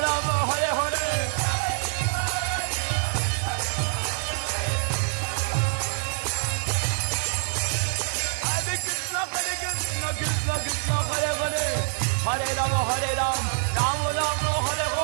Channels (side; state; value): left; silent; digital silence